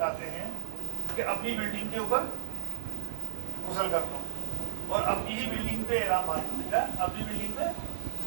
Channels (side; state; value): left; silent; digital silence